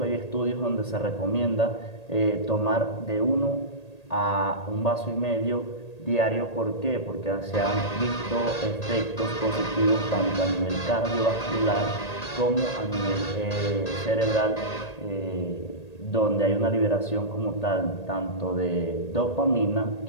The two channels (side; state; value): right; late; 1.8 ms